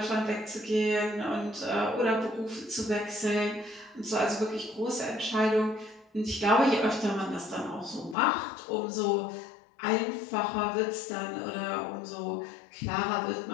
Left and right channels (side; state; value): right; drops out; at 8.2 s